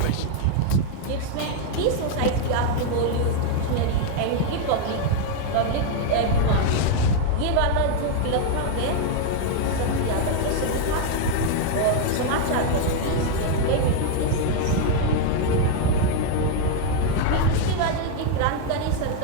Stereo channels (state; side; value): different; both; correlation 0.00